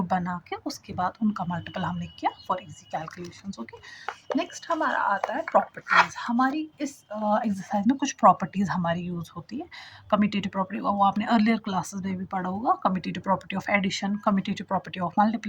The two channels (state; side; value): identical; both; correlation 1.00